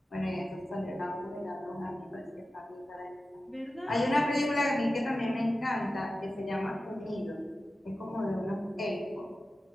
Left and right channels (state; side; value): normal; both; correlation 0.94